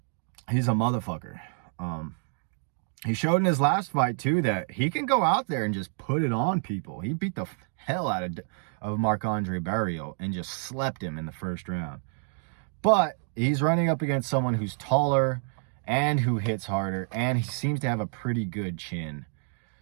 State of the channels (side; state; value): left; silent; 59 dB below the other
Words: he's a motherfucker. He showed in his last fight too that he can go out there and just put it on people. He beat the hell out of Marc-Andre Barrios and just slept him in the first round. But he's running up against someone who's taller and who hits harder, and he seems to have a pretty good chin.